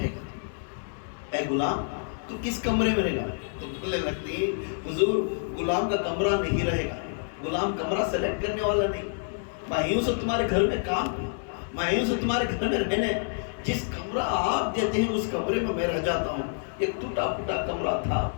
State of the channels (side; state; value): right; silent; digital silence